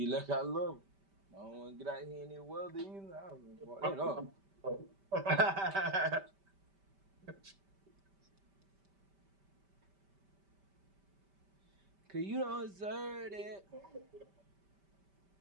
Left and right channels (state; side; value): late; left; 5.1 ms